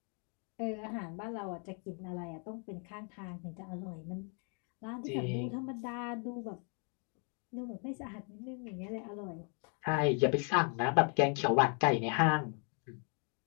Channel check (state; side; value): quieter; right; 39.9 dB